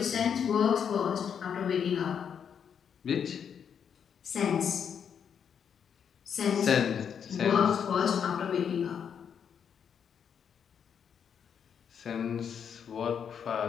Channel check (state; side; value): quieter; right; 7.6 dB